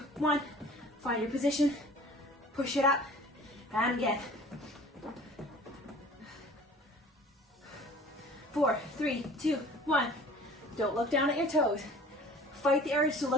1. Find your position, push it up, and again. 4, 3, 2, 1. Don't look down at your toes. Fight the urge to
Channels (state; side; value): normal; both; correlation 0.47